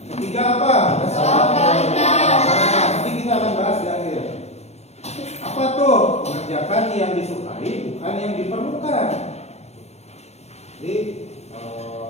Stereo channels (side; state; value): right; late; 0.31 ms